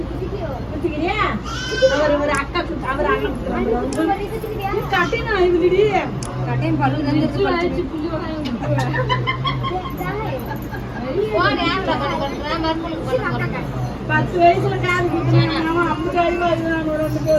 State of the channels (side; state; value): both; identical; correlation 1.00